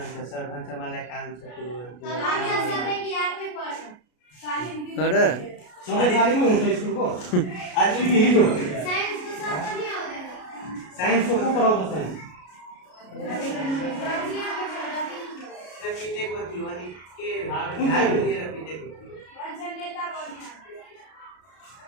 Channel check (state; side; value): late; right; 33 ms